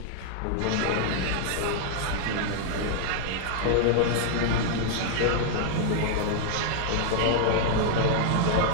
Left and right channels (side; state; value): both; different; correlation 0.00